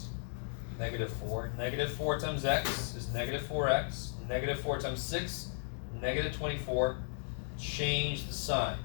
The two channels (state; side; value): silent; right; digital silence